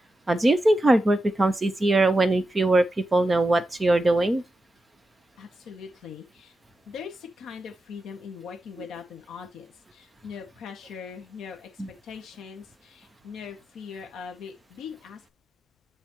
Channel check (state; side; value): normal; both; correlation 0.89